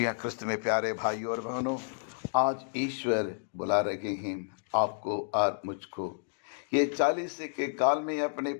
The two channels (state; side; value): silent; right; digital silence